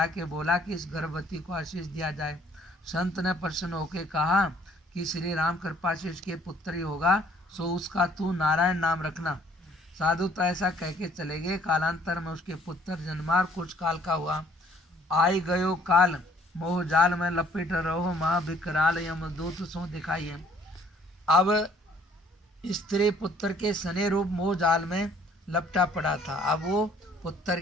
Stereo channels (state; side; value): normal; both; correlation 0.59